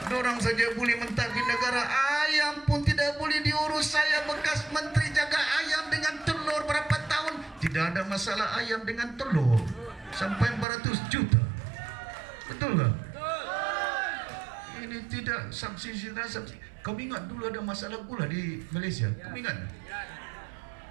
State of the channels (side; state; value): left; drops out; at 10.7 s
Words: Dorang saja boleh mentadbir negara. Ayam pun tidak boleh diurus. Saya bekas menteri jaga ayam dengan telur berapa tahun. Tidak ada masalah ayam dengan telur. Sampai 400 juta. Betul tak? Ini tidak subsidi. Kamu ingat dulu ada masalah gula di Malaysia? Kamu ingat?